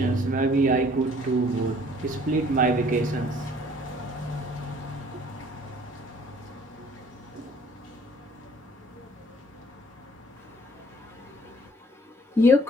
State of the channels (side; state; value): both; normal; correlation 0.57